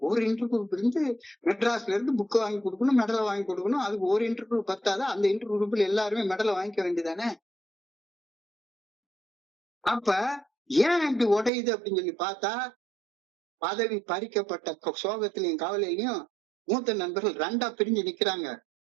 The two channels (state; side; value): drops out; left; at 11.5 s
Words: ஒரு இன்டர் குரூப் இருந்து மெட்ராஸ்ல இருந்து புக்கு வாங்கி கொடுக்கணும், மெடலை வாங்கி கொடுக்கணும், அதுக்கு ஒரு இன்டர் குரூப் பத்தாத, அந்த இன்டர் குரூப்ல எல்லாருமே மெடலை வாங்கிக்க வேண்டியதானே. அப்ப ஏன் இப்படி உடையுது அப்படின்னு சொல்லி பார்த்தா பதவி பறிக்கப்பட்ட சோகத்திலையும் கவலையிலையும் மூத்த நண்பர்கள் ரெண்டா பிரிஞ்சு நிக்கிறாங்க.